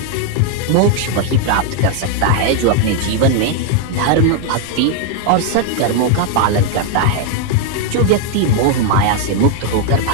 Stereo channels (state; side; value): different; both; correlation 0.00